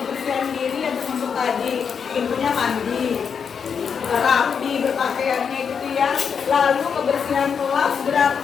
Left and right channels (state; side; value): quieter; right; 6.6 dB